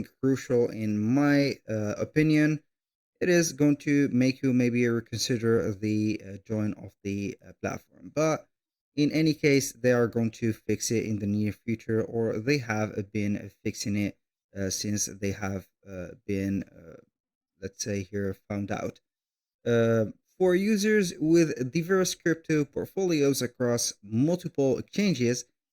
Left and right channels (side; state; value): both; identical; correlation 1.00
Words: crucial in my opinion, it is going to make you maybe reconsider the join of the platform. But in any case, they are going to fix it in the near future, or they have been fixing it since they have been, let's say here, found out. Uh, for users with diverse crypto portfolios across multiple exchanges